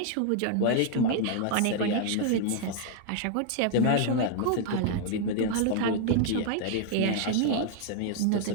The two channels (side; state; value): both; different; correlation 0.00